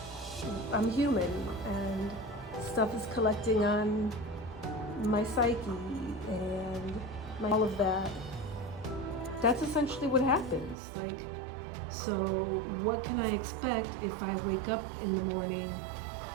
I'm human, and stuff is collecting on my psyche and all of that. That's essentially what happens. Like, so what can I expect if I wake up in the morning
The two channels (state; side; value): drops out; left; at 10.8 s